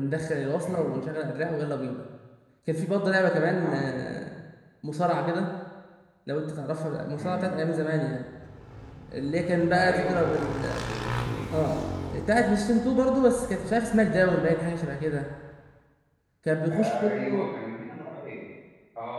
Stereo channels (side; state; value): both; identical; correlation 1.00